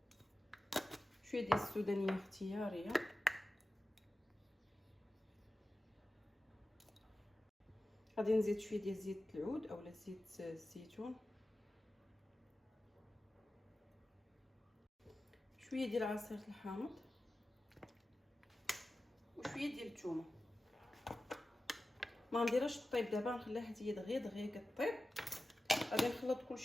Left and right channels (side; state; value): both; normal; correlation 0.94